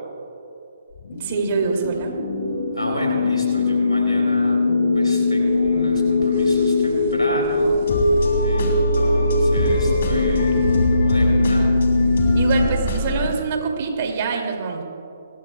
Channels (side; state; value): both; inverted; correlation -0.77